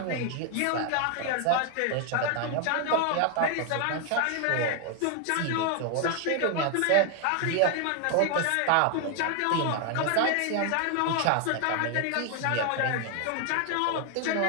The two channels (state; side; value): different; both; correlation 0.01